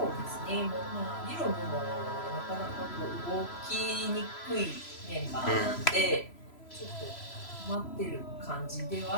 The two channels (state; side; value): late; right; 3.0 ms